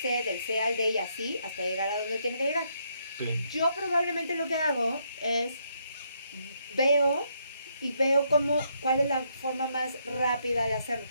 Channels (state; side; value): inverted; both; correlation -0.75